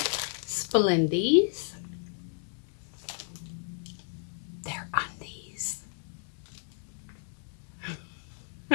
Splendies. They're undies.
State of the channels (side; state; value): right; silent; 56 dB below the other